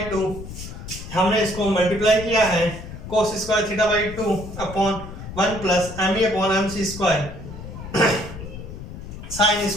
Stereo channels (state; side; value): noise; left; rumble, 11 dB below the sound